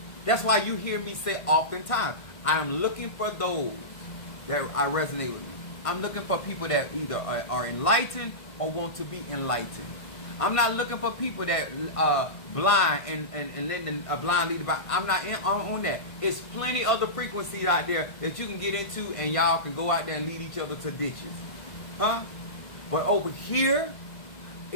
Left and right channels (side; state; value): right; late; 1.6 ms